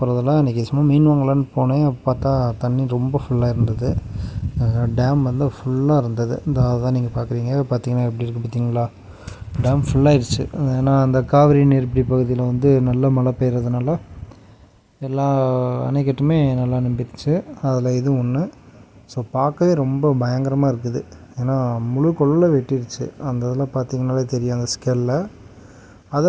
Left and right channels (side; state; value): both; identical; correlation 1.00